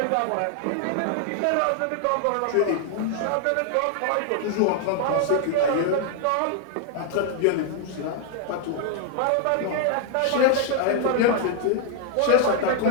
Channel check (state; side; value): different; both; correlation 0.00